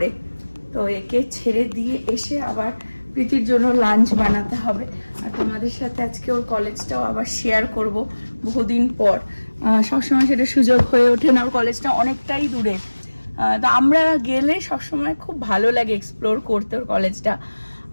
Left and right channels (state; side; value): inverted; both; correlation -1.00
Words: তো একে ছেড়ে দিয়ে এসে আবার প্রীতির জন্য লাঞ্চ বানাতে হবে। আর তোমাদের সাথে আজকে ওর কলেজটাও আবার শেয়ার করব বহুদিন পর। সবসময় সেটা সুযোগ হয়ে ওঠে না, ওর কলেজটা অনেকটাই দূরে। তো আমরা গেলে সবসময় খুব ভালো লাগে এক্সপ্লোর করতে ওর কলেজটা,